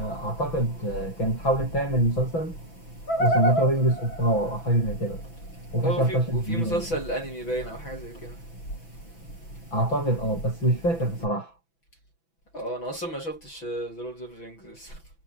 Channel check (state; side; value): late; right; 6.0 ms